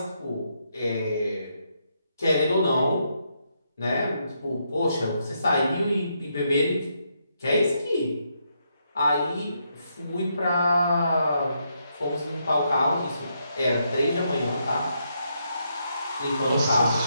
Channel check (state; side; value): inverted; both; correlation -0.78